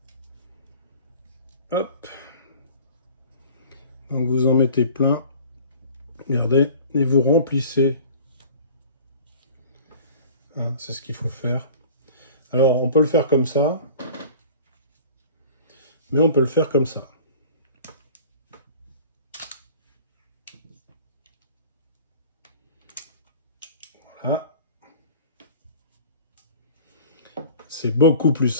Hop. Donc vous en mettez plein. Regardez. Et vous remplissez. Hein, c'est ce qu'il faut faire. Alors, on peut le faire comme ça. Mais on peut le faire comme ça. Voilà. C'est beaucoup plus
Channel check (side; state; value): both; inverted; correlation -0.44